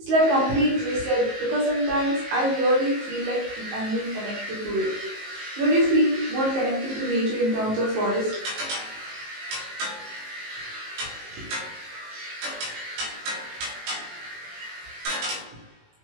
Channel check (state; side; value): late; left; 19 ms